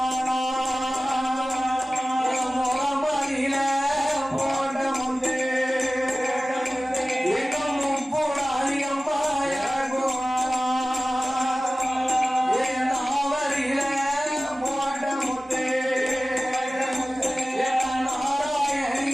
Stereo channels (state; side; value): normal; both; correlation 0.96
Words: முகமதியில போட்ட முத்தே இன்னும் முப்புடாதி அம்மா இறக்குவானா. நாவரியில போட்ட முத்தே